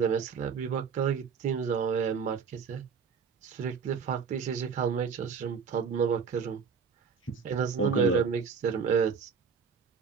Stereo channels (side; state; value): left; quieter; 6.0 dB